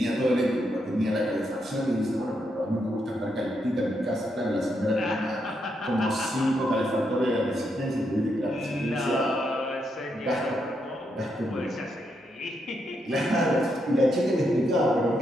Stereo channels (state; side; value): normal; both; correlation 0.80